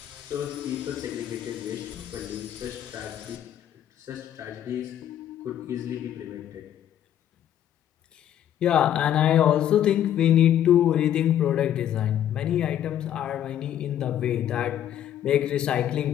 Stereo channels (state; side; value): quieter; right; 10.8 dB